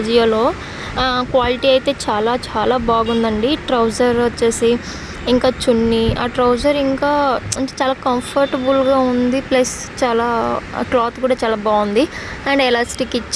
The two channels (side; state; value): both; identical; correlation 1.00